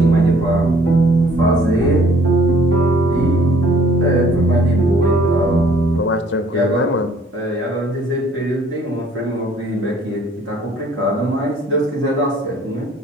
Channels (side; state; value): both; normal; correlation 0.58